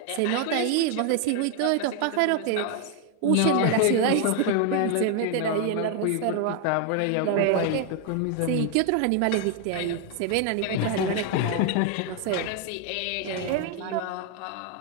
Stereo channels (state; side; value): different; both; correlation 0.00